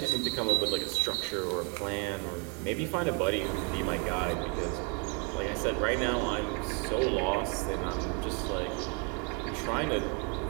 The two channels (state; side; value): quieter; left; 36.4 dB